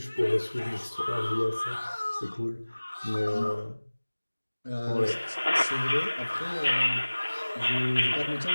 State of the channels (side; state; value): both; inverted; correlation -1.00